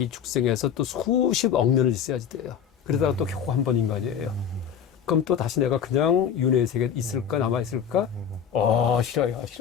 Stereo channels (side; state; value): right; quieter; 8.1 dB